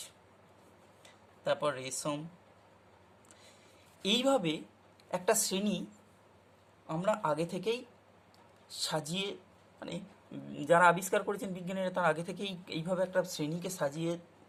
তারপর রেশম। এইভাবে একটা শ্রেণী আমরা আগে থেকেই সাজিয়ে, মানে যারা আবিষ্কার করেছেন বিজ্ঞানীরা, তারা আগে থেকেই এইভাবে একটা শ্রেণীকে সাজিয়ে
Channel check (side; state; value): both; identical; correlation 1.00